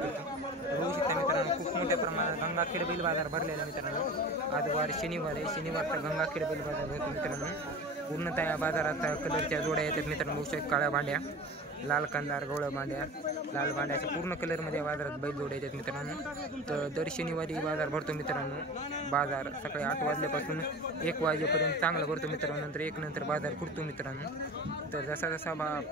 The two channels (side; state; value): both; normal; correlation 0.34